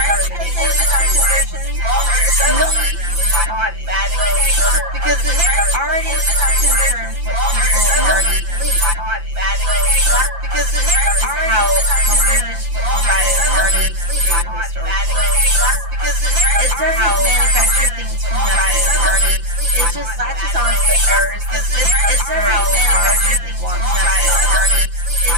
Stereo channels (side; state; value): left; late; 5.8 ms